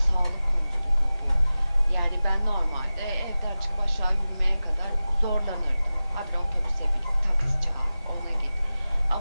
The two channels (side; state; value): both; inverted; correlation -0.95